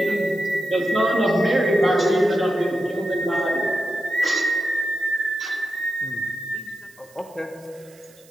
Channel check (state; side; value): noise; right; hiss, 27 dB below the sound